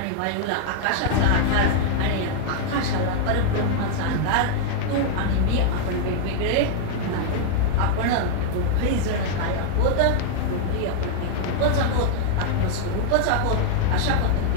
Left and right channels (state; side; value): different; both; correlation 0.00